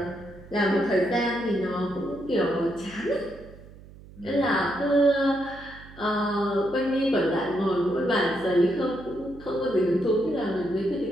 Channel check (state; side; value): noise; right; hum, 20 dB below the sound